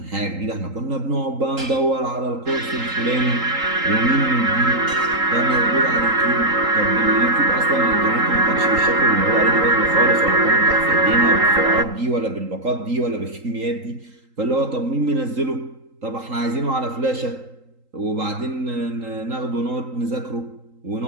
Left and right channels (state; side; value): late; left; 3.8 ms